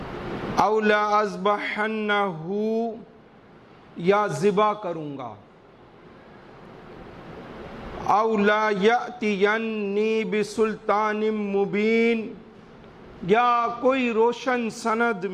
او لا اذبحنہ، یا ذبح کروں گا۔ او لا یأتینی بسلطان مبین، یا کوئی روشن سند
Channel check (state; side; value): identical; both; correlation 1.00